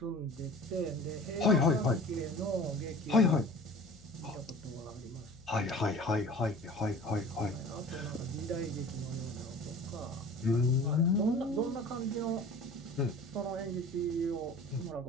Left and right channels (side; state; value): left; noise; hum, 24 dB below the sound